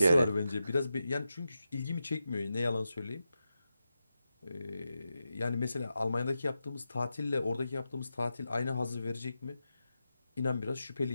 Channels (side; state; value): both; inverted; correlation -0.90